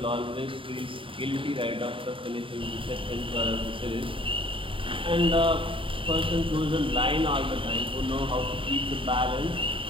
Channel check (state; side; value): late; left; 0.25 ms